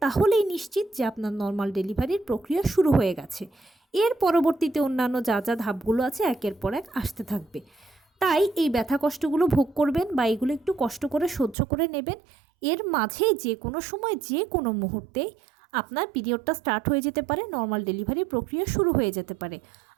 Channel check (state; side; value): drops out; left; at 11.6 s